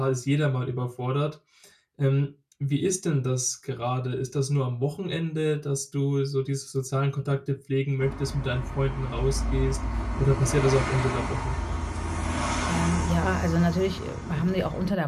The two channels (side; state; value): both; identical; correlation 1.00